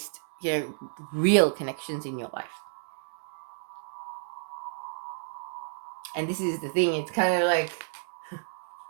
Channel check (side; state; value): left; silent; digital silence